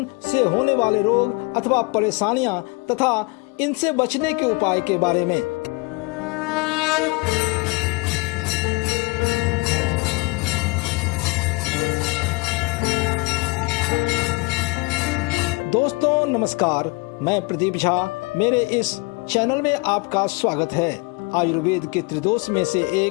से होने वाले रोग अथवा परेशानियां तथा इनसे बचने के उपाय के बारे में। दोस्तों नमस्कार, मैं प्रदीप झा। मेरे इस चैनल में आपका स्वागत है। आयुर्वेद के त्रिदोष में से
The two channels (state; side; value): quieter; right; 27.6 dB